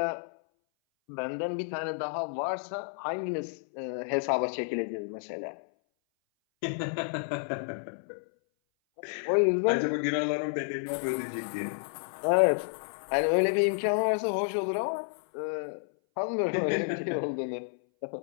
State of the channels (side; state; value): right; silent; 58 dB below the other